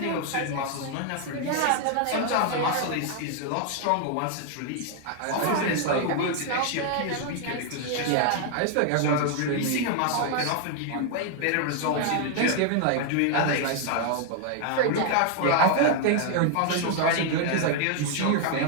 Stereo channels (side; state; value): both; different; correlation 0.00